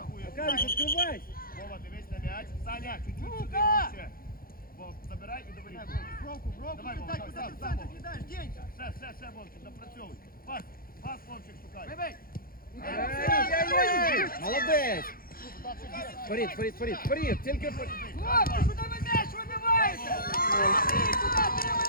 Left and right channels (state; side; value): late; right; 0.42 ms